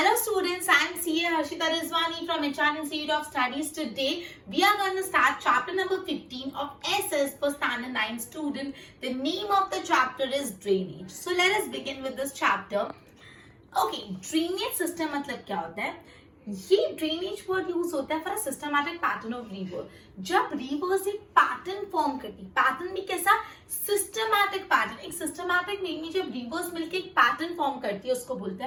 students, I am CA Harshita Rizwani from HR Institute of Studies. Today we are going to start chapter number 15 of SS for standard 9 student. The name of the chapter is drainage. So let us begin with this chapter. Okay, drainage system मतलब क्या होता है? ये drainage word use होता है for a systematic pattern of river. जब reverse एक pattern form करती, पैटर्न भी कैसा? Systematic pattern. एक सिस्टमैटिक वे में जब रिवर्स मिलकर एक पैटर्न फॉर्म करती है उसको बोलते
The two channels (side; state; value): both; identical; correlation 1.00